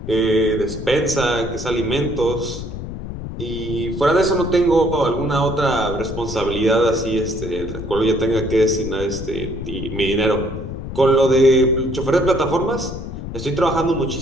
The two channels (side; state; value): left; noise; rumble, 8 dB below the sound